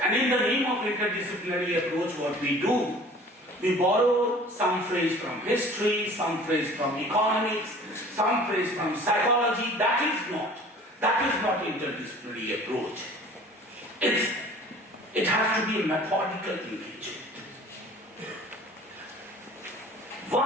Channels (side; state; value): both; normal; correlation 0.47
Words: And in the name of interdisciplinary approach, what we do, we borrow some phrase from history, some phrase from economics, some phrase from psychology. That is not interdisciplinary approach. It has to be a methodical engagement.